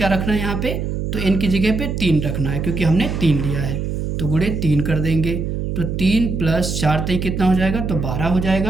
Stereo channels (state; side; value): noise; right; hum, 3 dB below the sound